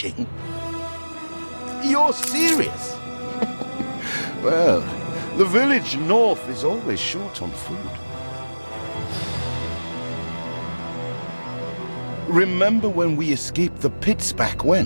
You're serious? Well, the village north is always short on food. Remember when we escaped the pits back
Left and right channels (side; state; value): both; inverted; correlation -1.00